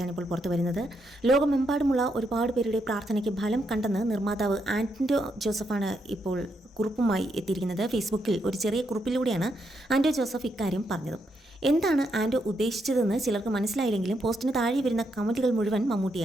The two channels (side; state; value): both; normal; correlation 0.79